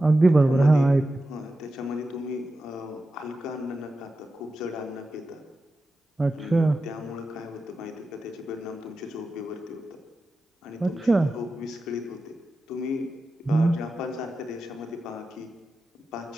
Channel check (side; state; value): both; normal; correlation 0.92